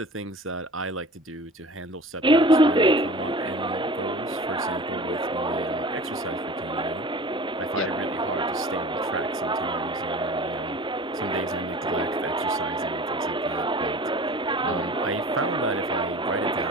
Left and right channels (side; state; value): both; normal; correlation 0.41